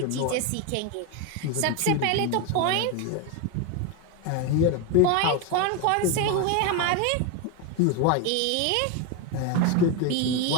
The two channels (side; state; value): both; different; correlation 0.02